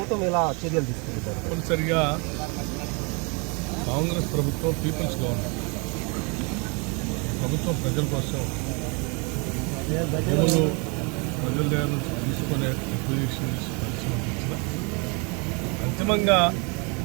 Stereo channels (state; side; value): quieter; left; 32.2 dB